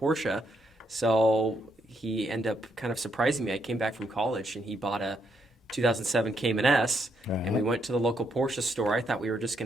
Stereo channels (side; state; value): both; normal; correlation 0.76